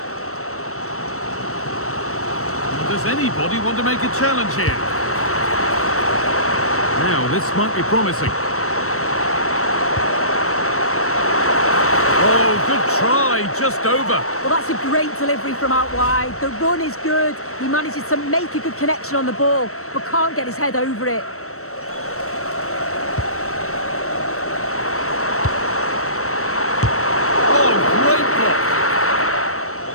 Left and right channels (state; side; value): late; right; 0.63 ms